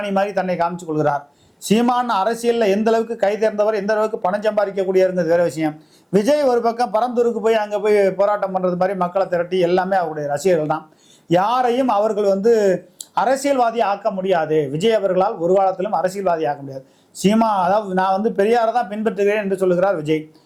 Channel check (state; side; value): identical; both; correlation 1.00